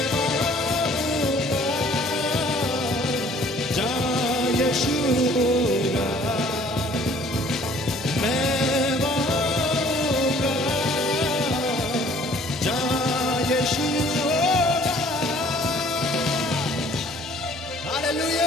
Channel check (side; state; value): both; normal; correlation 0.56